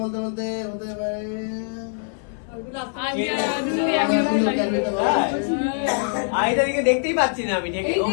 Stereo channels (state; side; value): silent; right; digital silence